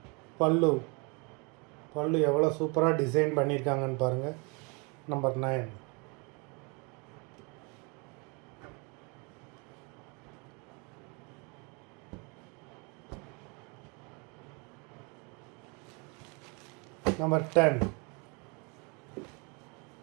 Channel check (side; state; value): left; quieter; 31.6 dB